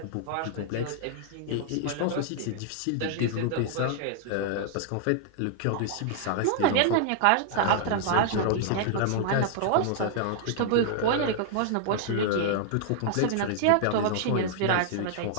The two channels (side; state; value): both; different; correlation -0.01